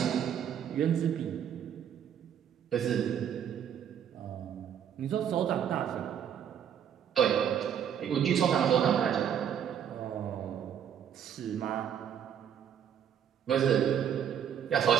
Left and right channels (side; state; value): left; quieter; 9.0 dB